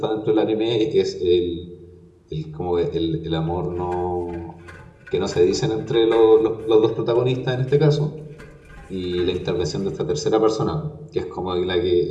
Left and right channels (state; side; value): identical; both; correlation 1.00